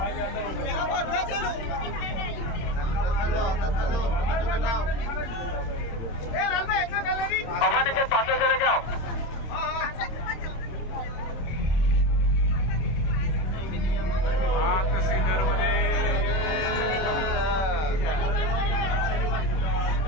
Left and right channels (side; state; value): right; late; 26 ms